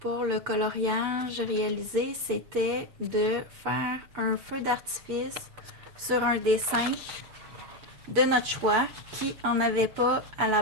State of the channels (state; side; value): late; left; 7.0 ms